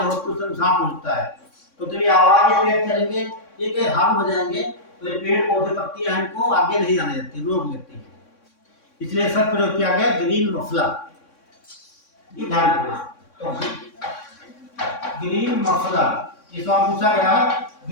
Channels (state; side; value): late; right; 3.6 ms